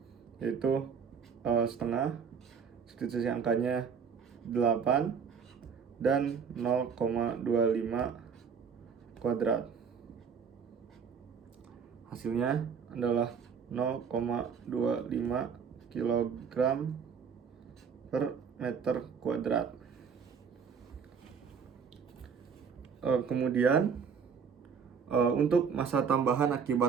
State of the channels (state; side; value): quieter; left; 6.4 dB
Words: yaitu setengah, substitusi angkanya 8 dan 0,25 kuadrat. Hasilnya adalah 0,25 kg per meter kuadrat. Kemudian untuk massa tambahan